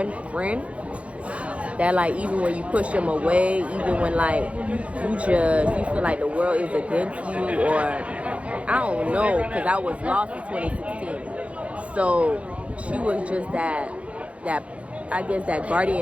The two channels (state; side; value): late; left; 0.063 ms